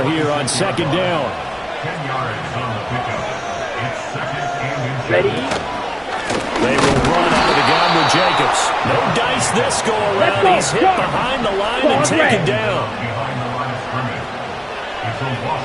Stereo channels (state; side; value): identical; both; correlation 1.00